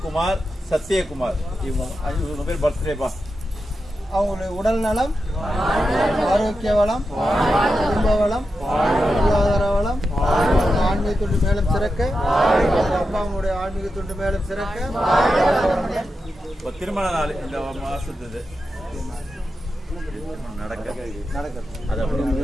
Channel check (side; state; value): both; normal; correlation 0.89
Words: சத்யகுமார் இவங்க பேர் பர்த்டேப்பா. அவங்களுடைய உடல் நலம், ஆரோக்கிய வளம், குடும்ப வளம், பொருளாதார வளம், ஆன்மீக தொண்டு மேலும் சிறக்க, அப்பாவுடைய ஆன்மீக தொண்டு மேலும் சிறக்க. இப்போ திருமண நாள் இந்த மாசத்து நடக்குது. அது அப்படி.